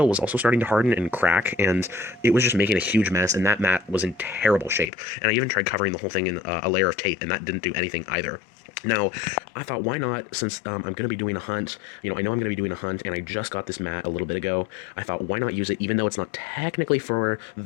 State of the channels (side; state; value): right; drops out; at 4.9 s